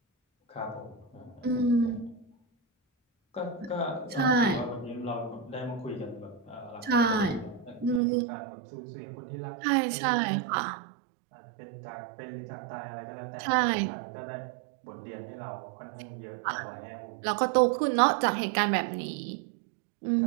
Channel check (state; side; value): drops out; left; at 8.0 s